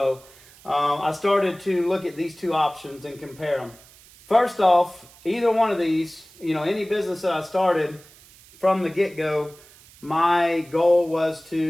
I started to look at these 2 options and compare them. First off, either one of these, any business that I started from the get-go, my goal was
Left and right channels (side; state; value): right; noise; hiss, 24 dB below the sound